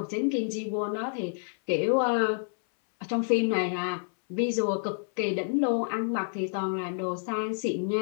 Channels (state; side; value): silent; right; 59 dB below the other